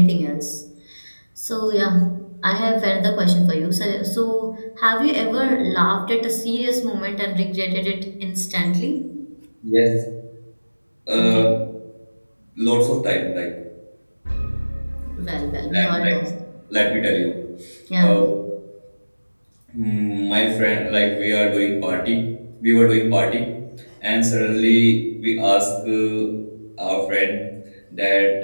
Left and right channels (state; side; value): inverted; both; correlation -1.00